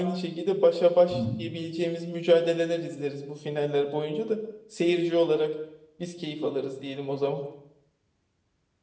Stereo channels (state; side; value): identical; both; correlation 1.00